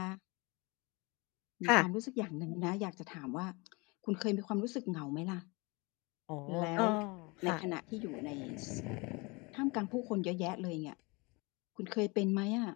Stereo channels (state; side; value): quieter; right; 27.2 dB